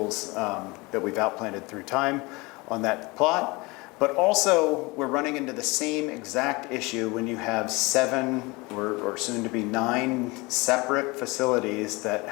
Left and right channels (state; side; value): quieter; right; 24.6 dB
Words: that we've outplanted through time on that plot. But also, we're running into the same exact issue when you have 7 or soon to be 9 separate facilities that